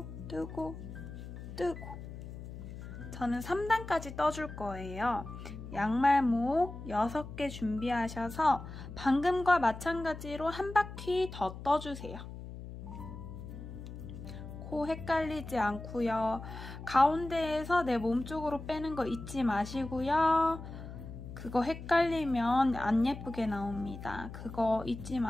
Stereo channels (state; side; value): noise; left; hum, 11 dB below the sound